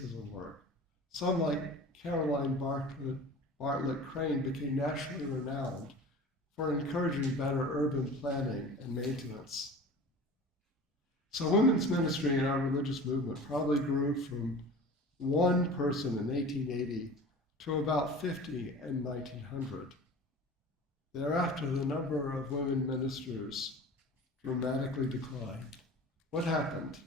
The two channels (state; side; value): normal; both; correlation 0.38